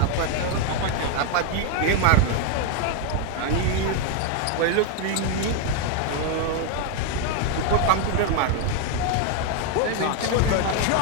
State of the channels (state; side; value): different; both; correlation 0.01